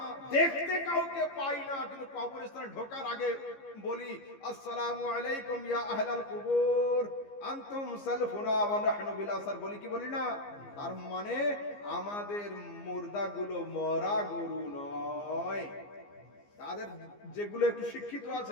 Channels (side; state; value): right; late; 15 ms